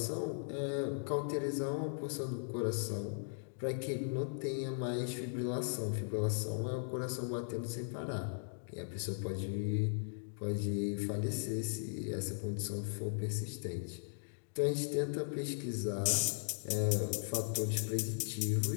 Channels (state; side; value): silent; right; digital silence